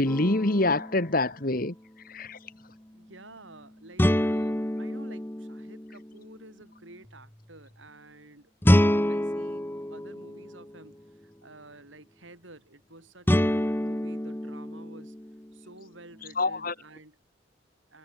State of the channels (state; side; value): normal; both; correlation 0.70